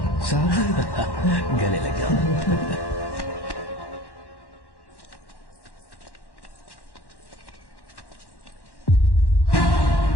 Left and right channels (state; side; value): late; right; 1.1 ms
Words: साहब गले लग गया।